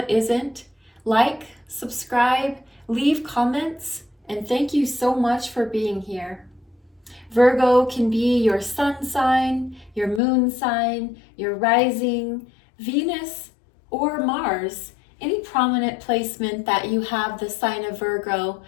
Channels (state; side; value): drops out; right; at 10.2 s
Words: isn't. Like, subscribe, leave comments, and thank you so much for being here. Virgo can be your sun sign, your moon sign, your rising, Venus, or Mars. Any prominent placement that you have the sign of Virgo.